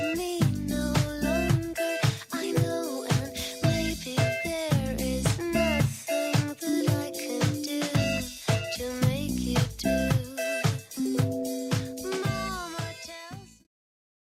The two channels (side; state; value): both; identical; correlation 1.00